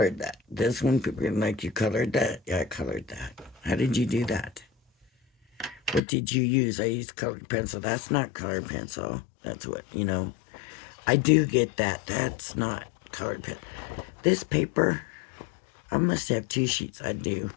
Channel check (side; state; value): right; drops out; at 6.0 s